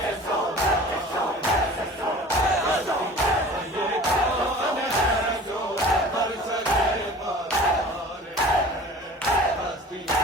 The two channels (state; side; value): normal; both; correlation 0.42